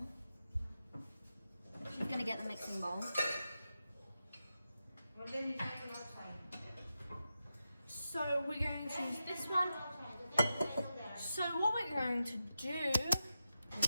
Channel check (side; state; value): both; inverted; correlation -0.89